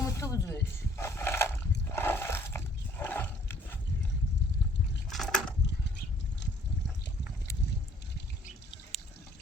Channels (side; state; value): both; normal; correlation 0.60